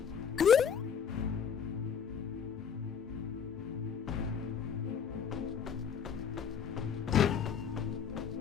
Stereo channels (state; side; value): quieter; right; 7.2 dB